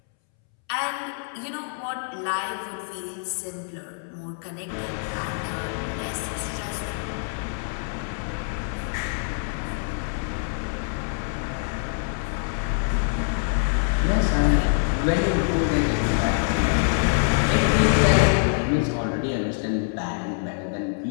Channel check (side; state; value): right; silent; 62 dB below the other